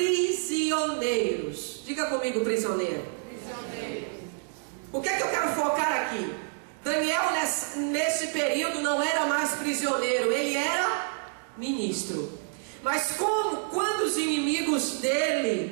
Diga comigo, prisioneiro. O que é que eu quero focar aqui? Daniel nesse período não era mais prisioneiro, ele era ministro. Mas quando os inimigos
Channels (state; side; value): silent; left; digital silence